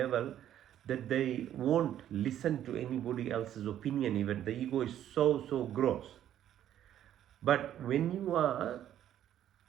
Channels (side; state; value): left; quieter; 11.2 dB